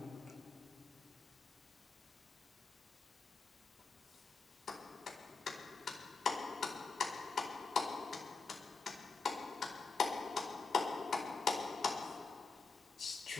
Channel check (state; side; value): quieter; right; 4.1 dB